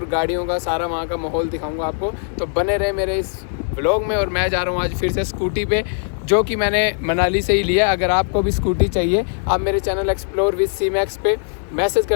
गाड़ियों का सारा वहाँ का माहौल दिखाऊंगा आपको। तो बने रहे मेरे इस व्लॉग में। और मैं जा रहा हूँ आज फिर से स्कूटी पे, जो कि मैंने मनाली से ही लिया। अगर आपको भी स्कूटी चाहिए, आप मेरे चैनल एक्सप्लोर विद C-Max पे मैसेज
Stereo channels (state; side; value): silent; right; 66 dB below the other